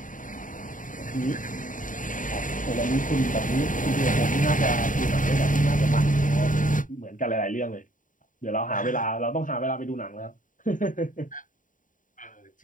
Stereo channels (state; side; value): late; right; 0.38 ms